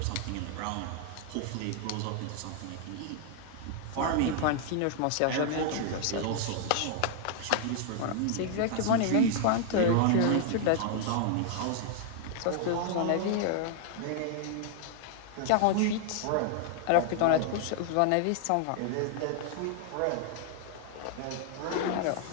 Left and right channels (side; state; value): both; different; correlation 0.00